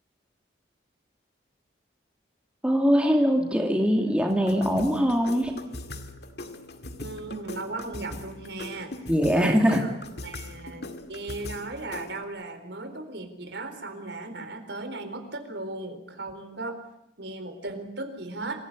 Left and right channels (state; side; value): normal; both; correlation 0.81